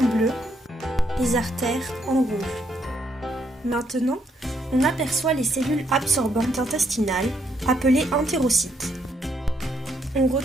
bleu, les artères en rouge. Maintenant, on aperçoit les cellules absorbantes intestinales, appelées entérocytes. On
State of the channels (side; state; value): both; normal; correlation 0.74